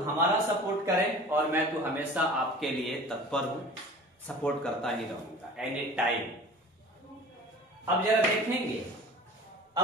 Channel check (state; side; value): normal; both; correlation 0.42